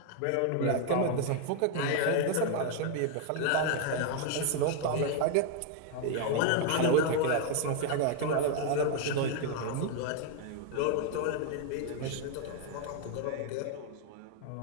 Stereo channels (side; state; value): both; different; correlation 0.01